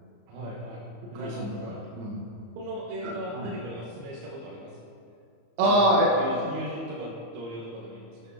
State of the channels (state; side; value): late; left; 34 ms